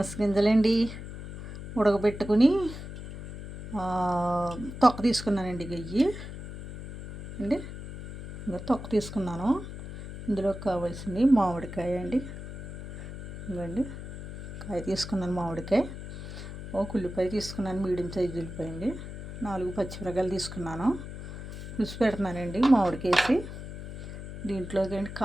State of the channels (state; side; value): noise; left; hum, 9 dB below the sound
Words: గింజలండి ఉడకబెట్టుకుని తొక్క తీసుకున్నానండి. గయ్యి అండి ఇంకా తొక్క తీసుకున్నాను. ఇందులో కావాల్సింది మామిడికాయ అండి. ఇవ్వండి కాయ తీసుకున్నాను. మామిడికాయ ఒక ఉల్లిపాయ తీసుకున్నాను. మీడియం సైజు ఉల్లిపాయ అండి. 4 పచ్చిమిరపకాయలు తీసుకున్నాను. పులుసు పెడుతున్నానండి మామిడికేసి. దీంట్లోకి